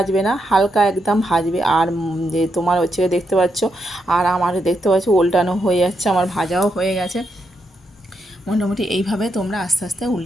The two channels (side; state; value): both; normal; correlation 0.82